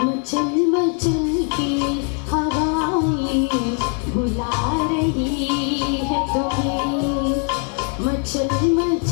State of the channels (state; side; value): quieter; right; 37.2 dB